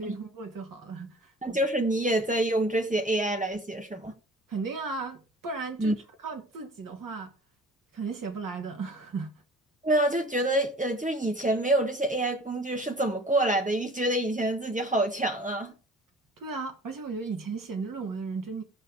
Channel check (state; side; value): normal; both; correlation 0.46